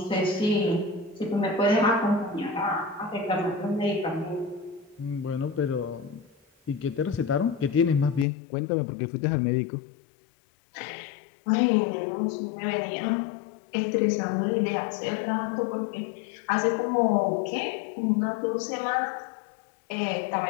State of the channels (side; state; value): right; drops out; at 8.2 s